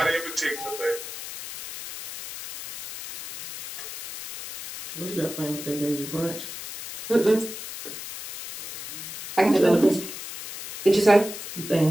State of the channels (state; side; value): noise; left; hiss, 10 dB below the sound